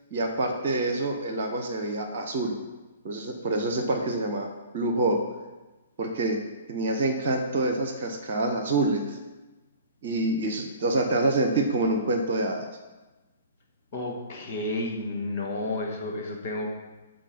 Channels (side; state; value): both; inverted; correlation -0.44